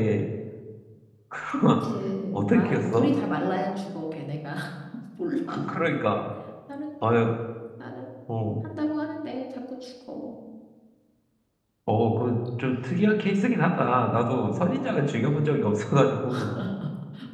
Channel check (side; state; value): both; identical; correlation 1.00